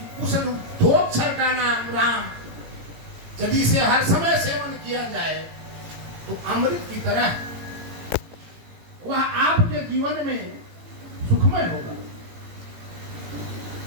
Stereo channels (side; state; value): left; late; 18 ms